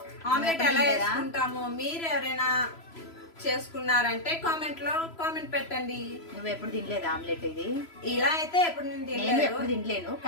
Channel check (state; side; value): late; right; 3.0 ms